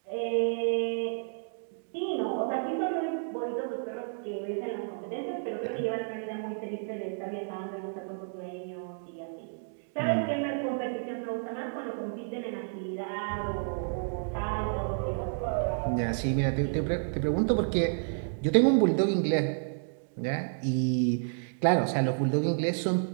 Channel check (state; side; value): silent; left; digital silence